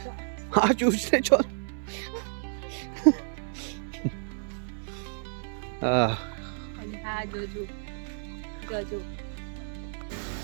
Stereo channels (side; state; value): left; silent; 55 dB below the other